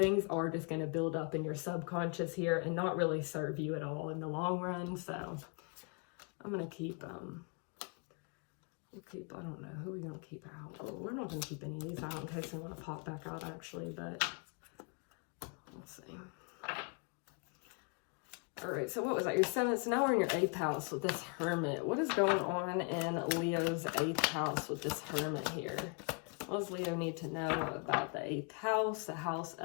are just going to build up in your subconscious here and not really serve you at all in the long run. So I'm going to keep, I don't know, who are we going to keep out? Well, we're not going to keep any of these out in case they want to pop back out, actually, but let's see. All right, so what was that? Your 7th. So now we're in your 8th house with this Hermit. What is going on in Leo's 8th house with this Hermit here? What does Leo need to know about the 8th house, the house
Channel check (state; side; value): quieter; right; 34.5 dB